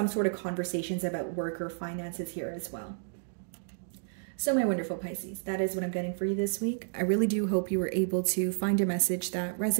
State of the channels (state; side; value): silent; left; digital silence